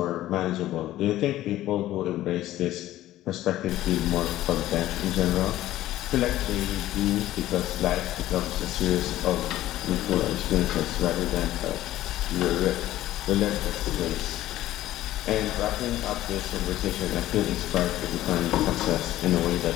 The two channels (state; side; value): quieter; right; 14.5 dB